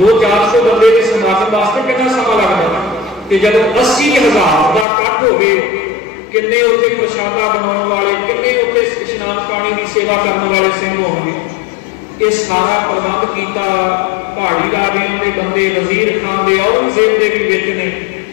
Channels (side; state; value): right; drops out; at 4.9 s